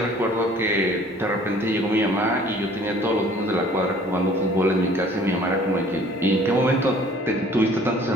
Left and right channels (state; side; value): normal; both; correlation 0.53